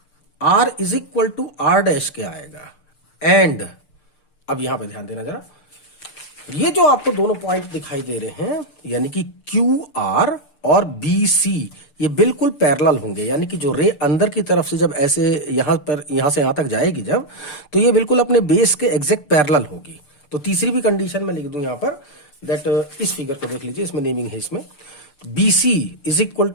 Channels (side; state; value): right; late; 6.7 ms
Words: R is equal to R dash के आएगा। एंड अब यहां पे ध्यान देना जरा, ये जो आपको दोनों पॉइंट दिखाई दे रहे हैं यानी कि क्यू आर और बी सी, ये बिल्कुल पैरेलल होंगे, यानी कि जो रे अंदर की तरफ से जब ऐसे यहां से यहां तक जाएगी जब, तो ये बिल्कुल अपने बेस के एग्जैक्ट पैरेलल होगी। तो तीसरी भी कंडीशन में लिख दूं यहां पर दैट, इस फिगर को देख लीजिए, इसमें नेमिंग है, इसमें B C is equal